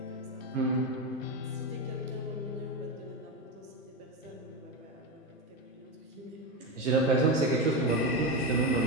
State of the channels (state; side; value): normal; both; correlation 0.14